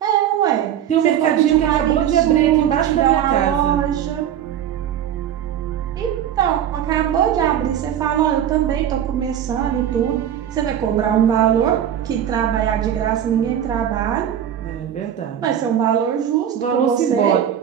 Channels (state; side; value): quieter; left; 10.0 dB